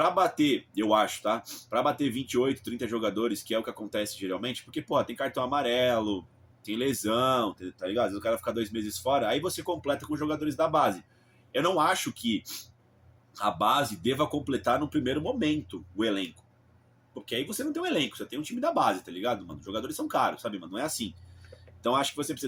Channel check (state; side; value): identical; both; correlation 1.00